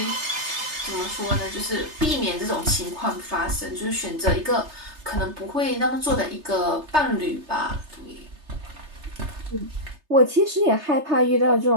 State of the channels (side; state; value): left; late; 3.3 ms